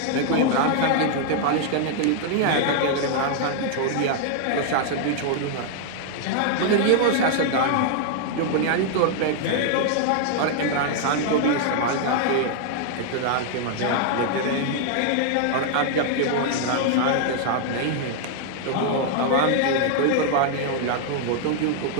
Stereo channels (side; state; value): both; different; correlation 0.00